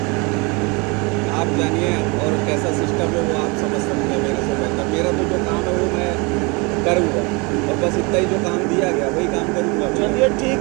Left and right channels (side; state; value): left; quieter; 28.8 dB